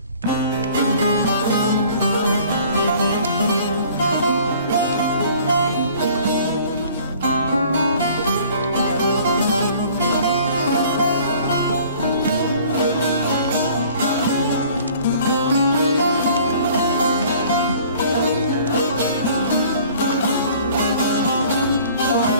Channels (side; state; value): both; inverted; correlation -0.52